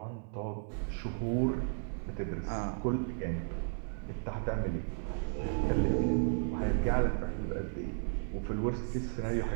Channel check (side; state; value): left; silent; 55 dB below the other